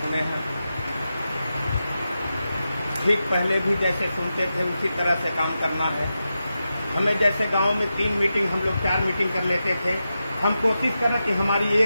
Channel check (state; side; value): inverted; both; correlation -0.90